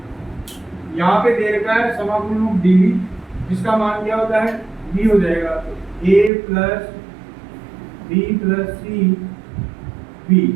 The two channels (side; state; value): left; drops out; at 6.3 s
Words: यहाँ पे दे रखा है समाकलन ऑफ डी बी, जिसका मान क्या होता है, b हो जाएगा, तो a plus b plus c b.